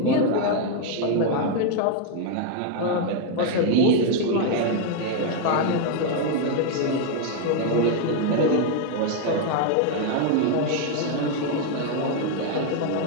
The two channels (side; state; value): both; different; correlation 0.01